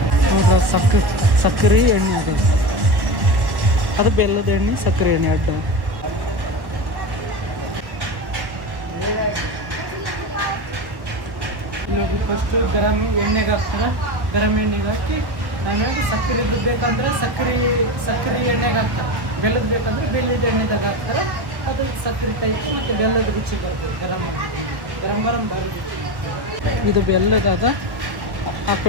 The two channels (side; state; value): left; late; 1.1 ms